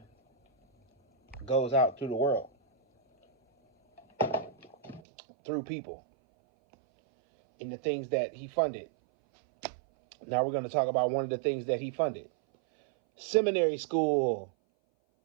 goes out through the world, through people, in the things that he funded. Now we're going to talk about one of the things that he funded. Seminary school.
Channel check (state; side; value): drops out; left; at 5.0 s